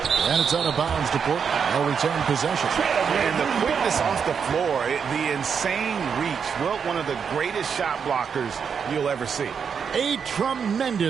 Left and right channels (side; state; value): left; quieter; 6.7 dB